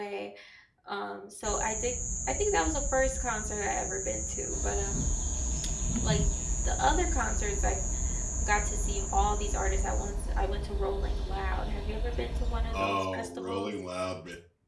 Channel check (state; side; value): identical; both; correlation 1.00